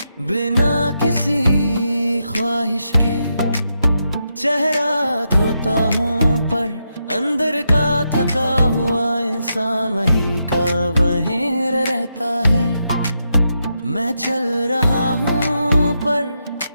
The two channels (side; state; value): both; inverted; correlation -0.84